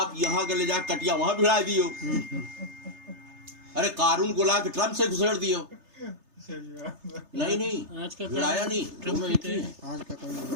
یہاں کے لے جا کٹیا وہاں بھڑا دیو. ارے قارون کو لا کے ٹرمپ سے گھسڑ دیو. نہیں آج کا بھڑایا نہیں، دونوں ایک ہی ہیں. آج کا قانون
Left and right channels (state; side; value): late; left; 3.3 ms